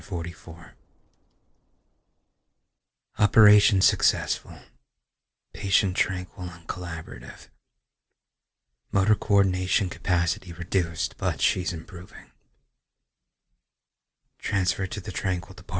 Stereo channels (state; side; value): identical; both; correlation 1.00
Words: Operation successful. Patient tranquil and collaborative. Motor coordination capacity reduced, but she's improving. Transferred to the Tranquil